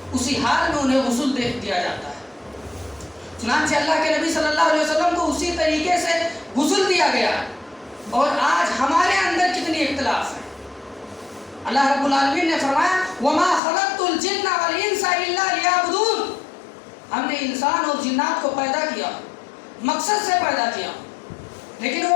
اسی حال میں انہیں غسل دے دیا جاتا ہے. چنانچہ اللہ کے نبی صلی اللہ علیہ وسلم کو اسی طریقے سے غسل دیا گیا. اور آج ہمارے اندر کتنی اختلاف ہے. اللہ رب العالمین نے فرمایا وَمَا خَلَقْتُ الْجِنَّ وَالْإِنسَ إِلَّا لِيَعْبُدُونَ. ہم نے انسان اور جنات کو پیدا کیا مقصد سے پیدا کیا, لیکن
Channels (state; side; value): drops out; right; at 13.6 s